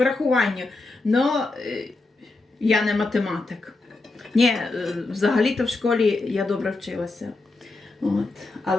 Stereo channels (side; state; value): right; quieter; 3.3 dB